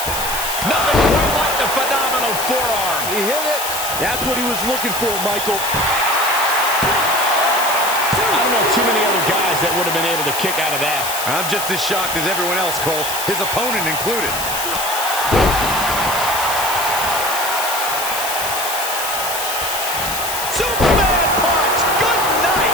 Nothing quite like the phenomenal forearm. He hit it. That's what he was looking for, Michael. I don't know too many other guys that would have been able to kick out of that. I'm just as shocked as everyone else, Cole, his opponent included. Superman punch. Good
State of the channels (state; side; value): noise; left; hiss, 4 dB below the sound